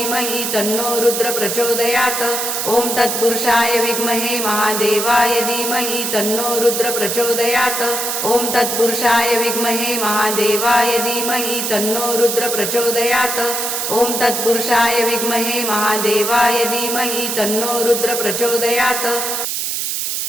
तन्नो रुद्र प्रचोदयात् ओम तत्पुरुषाय विद्महे महादेवाय धीमहि तन्नो रुद्र प्रचोदयात् ओम तत्पुरुषाय विद्महे महादेवाय धीमहि तन्नो रुद्र प्रचोदयात् ओम तत्पुरुषाय विद्महे महादेवाय धीमहि तन्नो रुद्र प्रचोदयात्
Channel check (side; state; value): right; noise; hiss, 2 dB below the sound